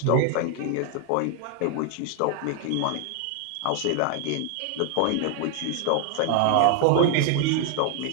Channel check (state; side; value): different; both; correlation 0.00